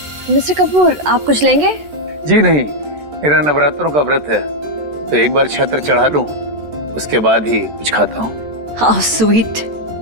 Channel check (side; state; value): left; late; 14 ms